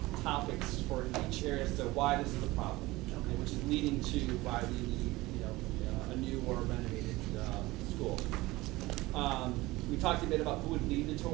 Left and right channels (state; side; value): quieter; left; 19.9 dB